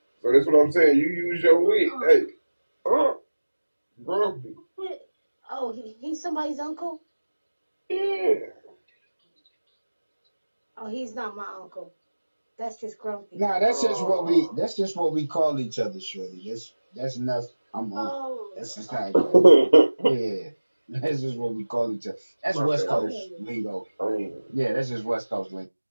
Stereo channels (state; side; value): inverted; both; correlation -1.00